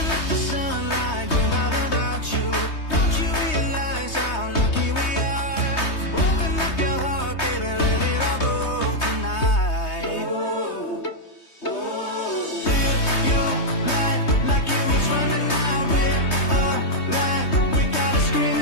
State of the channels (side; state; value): right; late; 3.2 ms